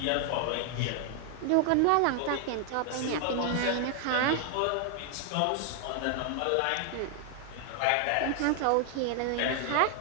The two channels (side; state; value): both; different; correlation 0.00